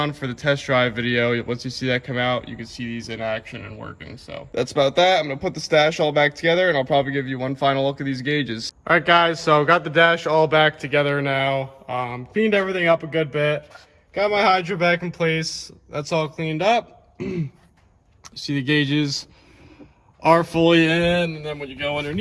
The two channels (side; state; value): both; identical; correlation 1.00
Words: for the test drive video. Once you see that come out, you can see these in action and working. So that's about that. I'm going to put the stash all back together, and I'll probably give you one final look at these gauges. All right, guys, so got the dash all back together now. Cleaned everything up a good bit. Got my hydro back in place. That's all cleaned up. See, the gauges are fully in, and then when you go